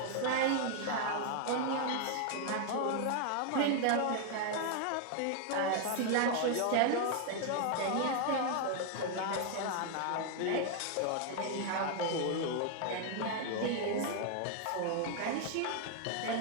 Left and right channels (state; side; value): different; both; correlation 0.00